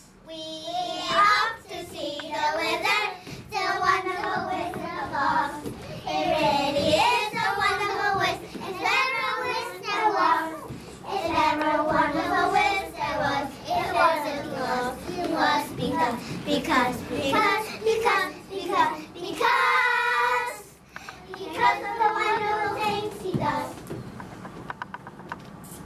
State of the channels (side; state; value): both; identical; correlation 1.00